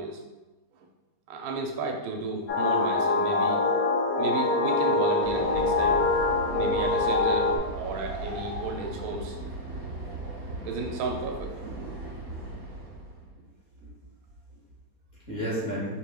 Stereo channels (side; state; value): left; late; 4.2 ms